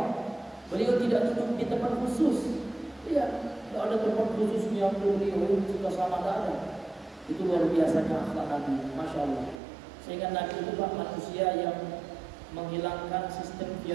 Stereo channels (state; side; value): drops out; left; at 9.6 s